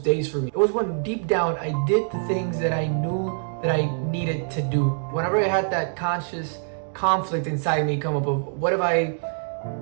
for me. It was when deep down I did the things that I knew that I needed to do. Whenever I had that conscious conflict inside me come up of, what if I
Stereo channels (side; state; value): left; silent; digital silence